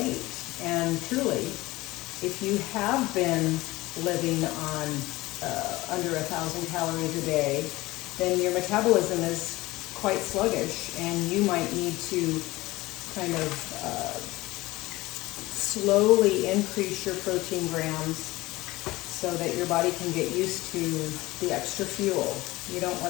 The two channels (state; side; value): quieter; right; 19.4 dB